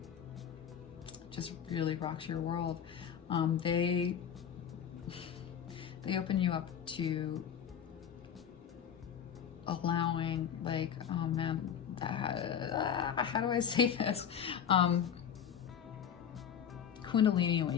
just really rocks your world. They open you up to allowing, like, oh man, how do I say this? Kundalini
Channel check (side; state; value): right; quieter; 8.3 dB